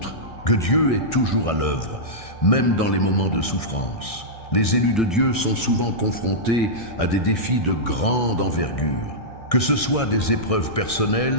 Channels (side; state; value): right; late; 1.6 ms